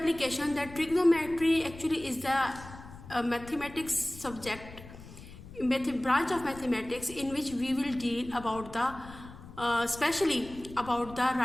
that trigonometry actually is the mathematics subject, branch of mathematics in which we will deal about the especially about the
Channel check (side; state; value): left; noise; rumble, 16 dB below the sound